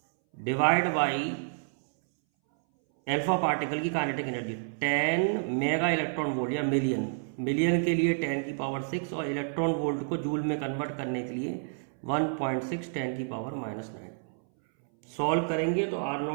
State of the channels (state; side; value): silent; left; 58 dB below the other